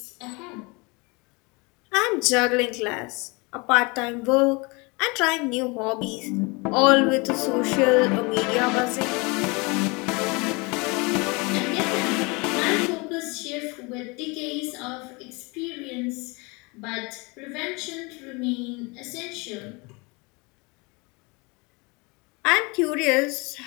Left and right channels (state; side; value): quieter; right; 27.8 dB